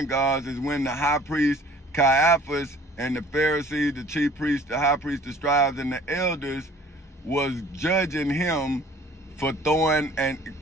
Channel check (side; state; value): both; normal; correlation 0.51